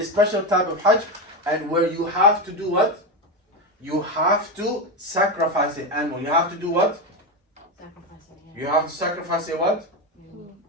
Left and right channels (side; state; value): both; normal; correlation 0.14